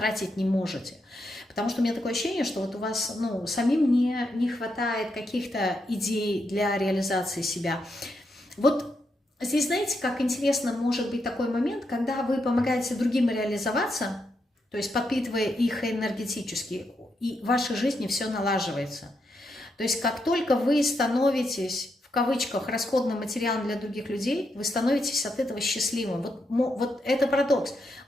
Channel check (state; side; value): normal; both; correlation 0.82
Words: не можете. Потому что у меня такое ощущение, что вот у вас, ну, самим не хватает каких-то идей для реализации себя. Вот здесь, знаете, как интересно может быть такой момент, когда вы помогаете другим реализоваться, то есть подпитывая их энергетически, и в вашей жизни все налаживается. То есть как только вы становитесь, в кавычках, расходным материалом для других людей, вы становитесь от этого счастливым. Вот это парадокс.